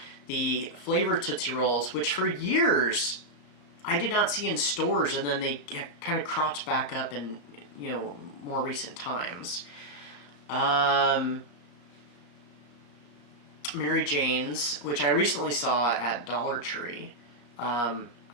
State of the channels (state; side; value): late; right; 33 ms